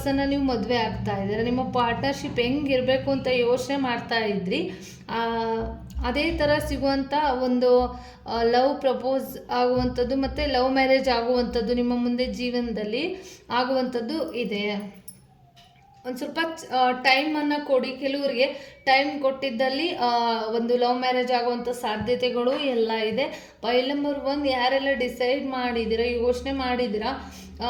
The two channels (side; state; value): both; identical; correlation 1.00